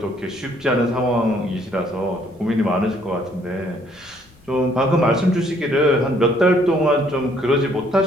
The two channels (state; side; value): noise; left; rumble, 28 dB below the sound